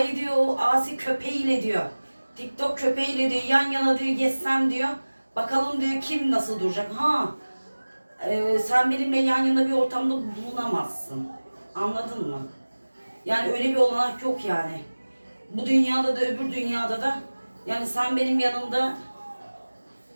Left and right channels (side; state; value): both; inverted; correlation -1.00